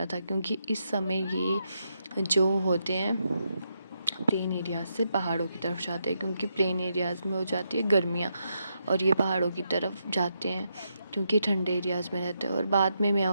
था, क्योंकि इस समय ये जो होते हैं प्लेन एरियाज से पहाड़ों की तरफ जाते हैं, क्योंकि प्लेन एरियाज़ में हो जाती है गर्मियाँ और ये पहाड़ों की तरफ जाते हैं क्योंकि ठंडे एरियाज़ में रहते हैं। और बाद में मैं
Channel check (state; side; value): inverted; both; correlation -0.82